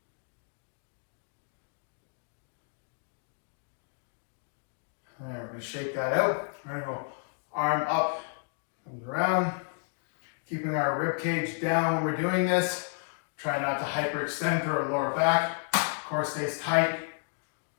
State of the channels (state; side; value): silent; right; 57 dB below the other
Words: And we're going to shake that out. We're going to go arm up, comes around, keeping our rib cage down when we're doing this. Try not to hyperextend through our lower back. Core stays tight.